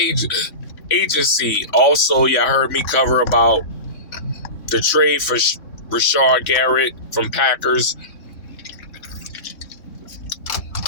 agency. Also, y'all heard me cover about the trade for Rashard Garrett from Packers.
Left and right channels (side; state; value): right; late; 3.6 ms